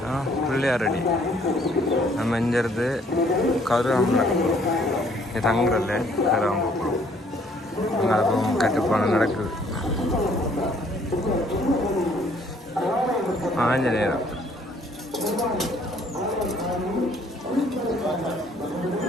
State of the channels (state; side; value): normal; both; correlation 0.62